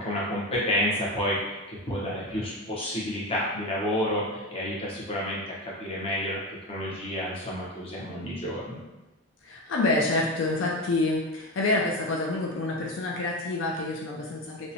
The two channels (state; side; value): normal; both; correlation 0.19